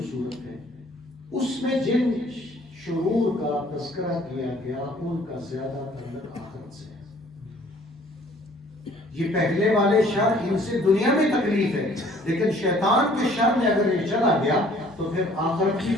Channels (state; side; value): normal; both; correlation 0.57